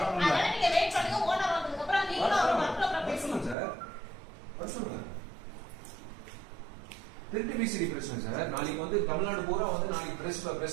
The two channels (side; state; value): left; drops out; at 3.6 s